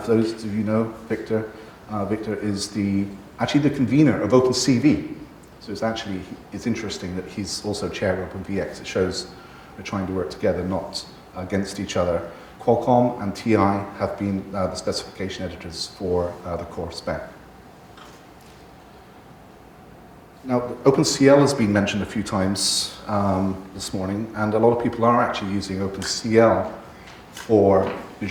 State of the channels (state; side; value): identical; both; correlation 1.00